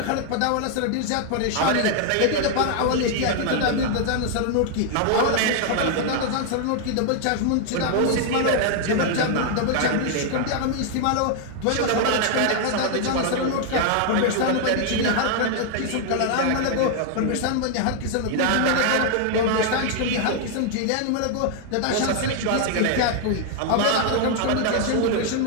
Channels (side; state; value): both; different; correlation 0.00